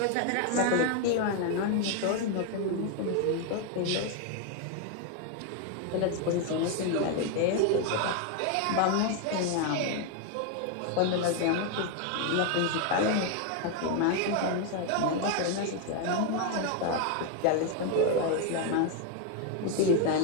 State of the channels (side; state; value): both; different; correlation 0.01